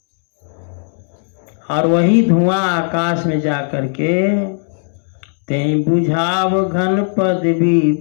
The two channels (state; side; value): silent; right; 68 dB below the other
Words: और वही धुआं आकाश में जा करके तें बुझाव घन पद भी